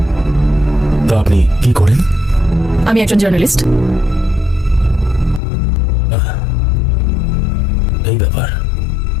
তা আপনি কি করেন? আমি একজন জার্নালিস্ট। এই ব্যাপার।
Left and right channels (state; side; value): drops out; right; at 5.4 s